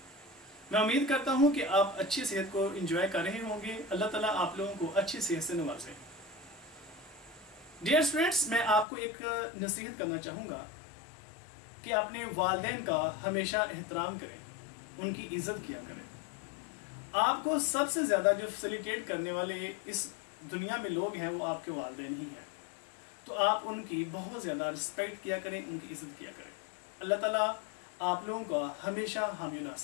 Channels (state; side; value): drops out; right; at 8.8 s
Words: मैं उम्मीद करता हूँ कि आप अच्छी सेहत को एंजॉय कर रहे होंगे। अल्लाह ताला आप लोगों को अच्छी सेहत से नवाजे। डियर स्टूडेंट्स, मैं आपको एक नसीहत करना चाहूँगा कि अपने वालिदैन का हमेशा एहतराम करें, उनकी इज़्ज़त किया करें। आपको सबसे ज़्यादा जो फैसिलिटेट करने वाले इस दुनिया में लोग हैं वो आपके वालिदैन ही हैं, तो आप उनकी बहुत ज़्यादा रिस्पेक्ट किया करें, उनकी इज़्ज़त किया करें। अल्लाह ताला आप लोगों का हमेशा हामी